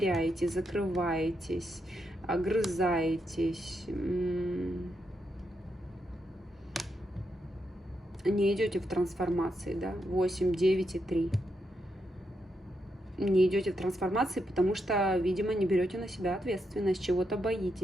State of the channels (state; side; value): normal; both; correlation 0.82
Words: закрываетесь, огрызаетесь. не идете в трансформации, да, 8, 9 и 3. Не идете в трансформации, потому что, видимо, не берете на себя ответственность, чего-то